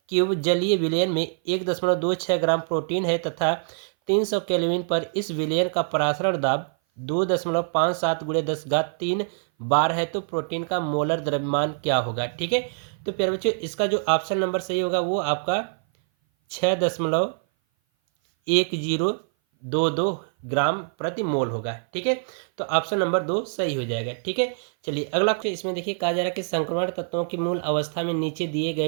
क्यूब जलीय विलयन में 1.26 ग्राम प्रोटीन है तथा 300 केल्विन पर इस विलयन का परासरण दाब 2.57 × 10³ बार है, तो प्रोटीन का मोलर द्रव्यमान क्या होगा। ठीक है, तो प्यारे बच्चों, इसका जो ऑप्शन नंबर सही होगा वो आपका 6.1022 ग्राम प्रति मोल होगा। ठीक है, तो ऑप्शन नंबर 2 सही हो जाएगा। ठीक है, चलिए अगला क्वेश्चन इसमें देखिए कहा जा रहा है कि संक्रमण तत्वों की मूल अवस्था में नीचे दिए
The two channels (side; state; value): left; silent; 57 dB below the other